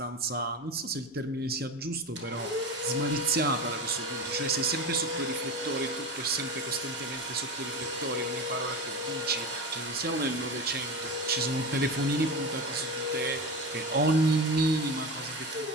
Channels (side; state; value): both; normal; correlation 0.25